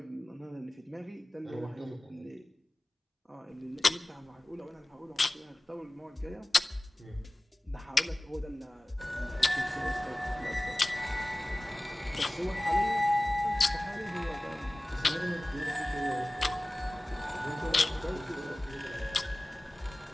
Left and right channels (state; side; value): normal; both; correlation 0.98